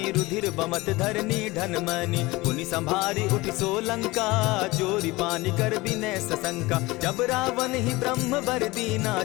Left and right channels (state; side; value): quieter; right; 21.4 dB